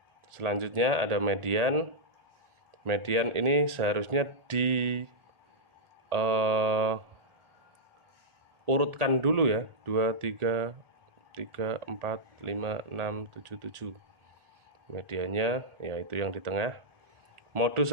Selanjutnya ada median. Median ini seharusnya urutkan dulu ya. 2, 3, 3, 4, 5, 6, 7, 7. Mediannya yaitu yang di tengah.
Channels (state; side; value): late; left; 1.4 ms